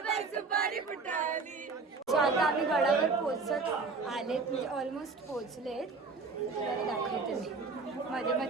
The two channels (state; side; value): quieter; left; 4.2 dB